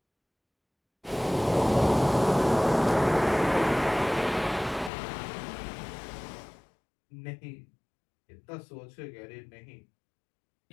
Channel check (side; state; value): right; drops out; at 4.9 s